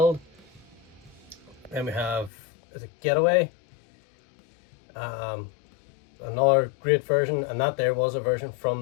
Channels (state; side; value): drops out; right; at 2.3 s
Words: Then we have, is it Getaway? another great version, and that there was a version